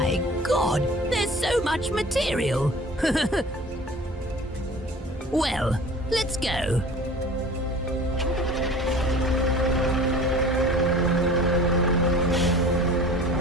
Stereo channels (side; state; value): both; normal; correlation 0.43